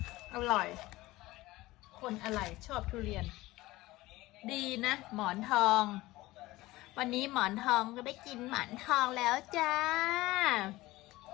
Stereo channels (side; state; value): right; quieter; 18.7 dB